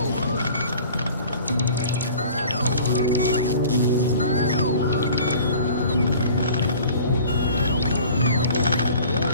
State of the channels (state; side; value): inverted; both; correlation -0.46